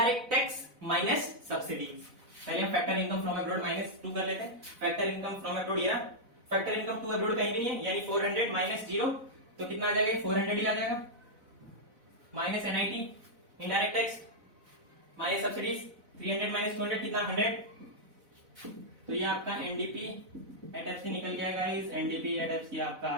tax minus subsidies. पहले हम factor income from abroad minus 2 कर लेते हैं। फैक्टर इनकम फ्रॉम अब्रॉड, ये फैक्टर इनकम टू अब्रॉड कहीं भी नहीं है, यानी 400 माइनस 0, तो कितना आ जाएगा, 400 ही आ जाएगा। Minus NIT indirect tax minus subsidies 300 minus 200 कितना 100। तो ये आपका एनडीपी एट एफ सी निकल गया guys. NDP at F C आपका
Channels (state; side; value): late; left; 4.0 ms